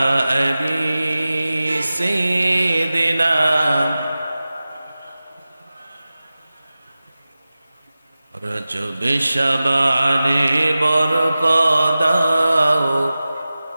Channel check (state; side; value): inverted; both; correlation -0.95